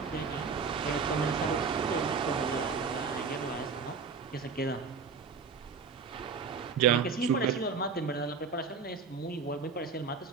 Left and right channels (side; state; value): left; quieter; 5.3 dB